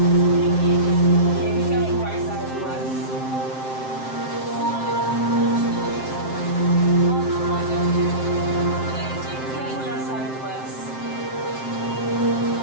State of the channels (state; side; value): late; right; 7.6 ms